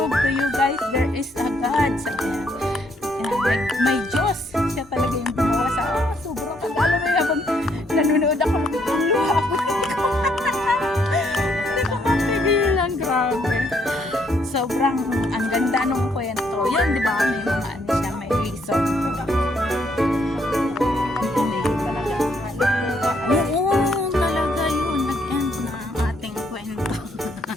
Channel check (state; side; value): normal; both; correlation 0.71